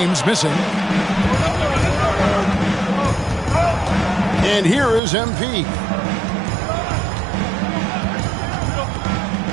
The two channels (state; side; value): drops out; left; at 5.0 s